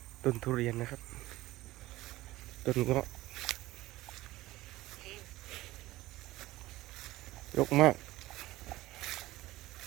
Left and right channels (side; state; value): left; quieter; 17.4 dB